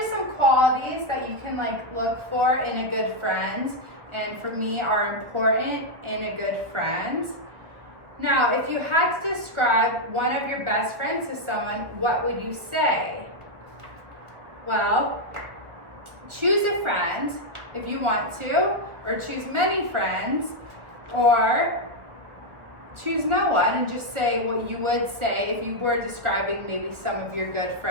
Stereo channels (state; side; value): late; left; 1.2 ms